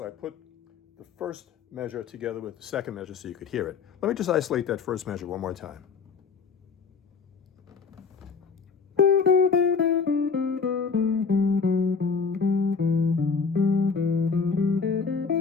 I put the first measure together with the second measure so you could hear it. Let me just isolate that first measure one more time.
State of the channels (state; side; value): quieter; right; 5.3 dB